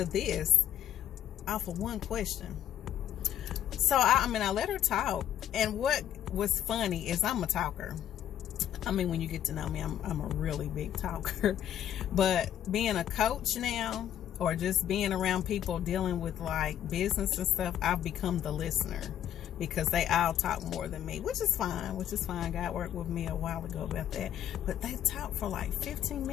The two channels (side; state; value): right; quieter; 10.9 dB